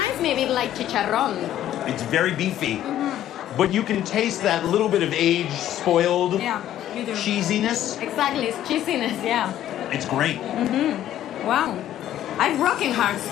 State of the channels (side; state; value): right; quieter; 12.1 dB